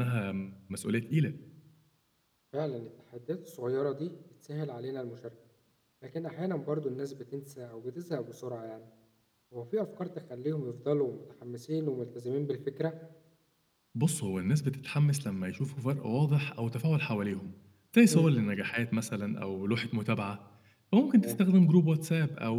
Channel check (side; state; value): both; identical; correlation 1.00